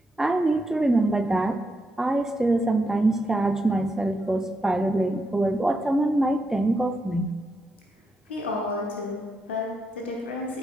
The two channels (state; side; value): normal; both; correlation 0.83